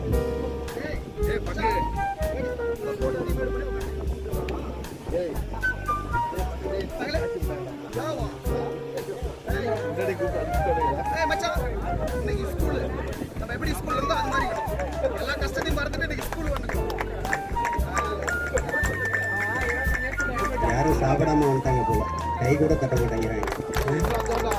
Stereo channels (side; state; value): both; identical; correlation 1.00